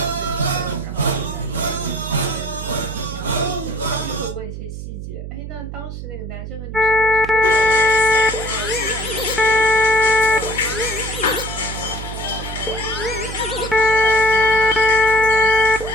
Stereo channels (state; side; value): noise; right; hum, 9 dB below the sound